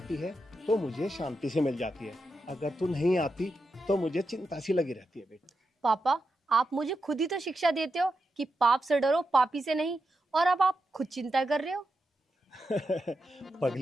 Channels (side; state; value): both; normal; correlation 0.87